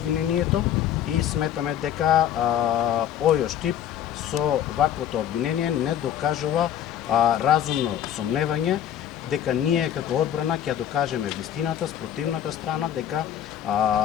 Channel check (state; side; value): quieter; right; 10.3 dB